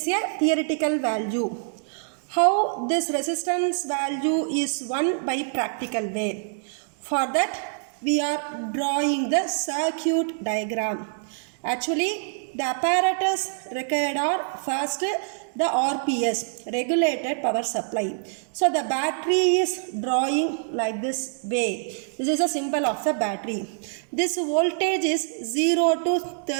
a theoretical value. How this resistance value is 1 by practical way. For that we are drawing the circuit diagram. Actually, the apparatus required are first the RPS, regulated power supply. So the battery is drawing like this way. This is a symbol of the battery. This voltage is 0 to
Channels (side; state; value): left; silent; digital silence